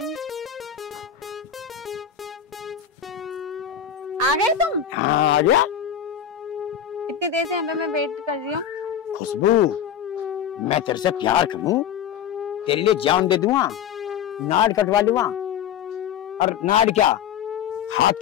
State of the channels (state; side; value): quieter; right; 8.9 dB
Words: आ गए तुम? हाँ आ गया। इतनी देर से यहाँ पे मैं वेट कर रही हूँ। खुशबू, मैं तेरे से प्यार करूं, तेरे लिए जान दे दूंगा, नाड़ कटवा लूंगा, और नाड़ क्या हाथ